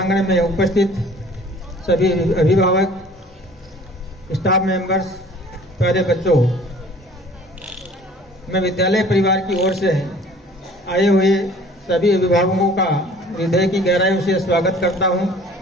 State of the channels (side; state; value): both; normal; correlation 0.50